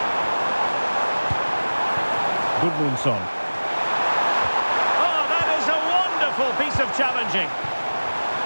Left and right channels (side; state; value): both; inverted; correlation -1.00